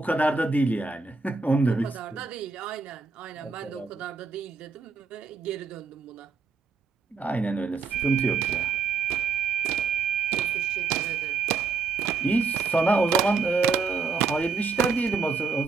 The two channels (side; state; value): left; quieter; 4.7 dB